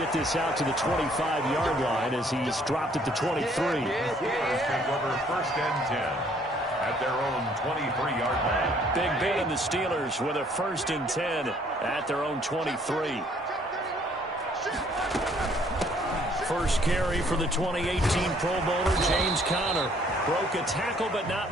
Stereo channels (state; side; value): normal; both; correlation 0.62